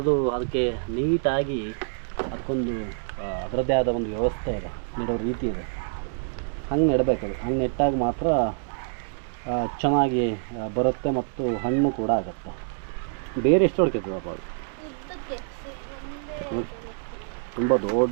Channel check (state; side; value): silent; left; digital silence